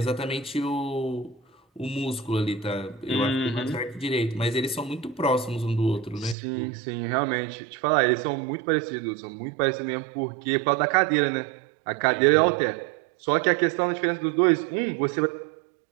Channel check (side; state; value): left; drops out; at 6.4 s